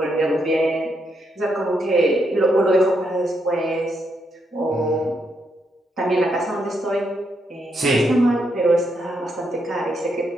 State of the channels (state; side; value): normal; both; correlation 0.79